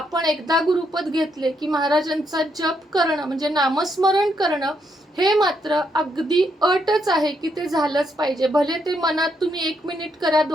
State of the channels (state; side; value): normal; both; correlation 0.77